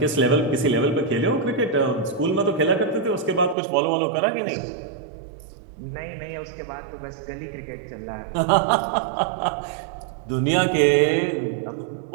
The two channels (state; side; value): drops out; left; at 3.6 s